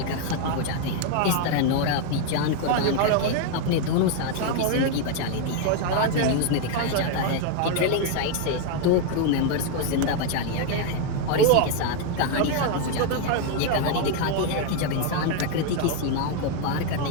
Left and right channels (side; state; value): both; different; correlation 0.01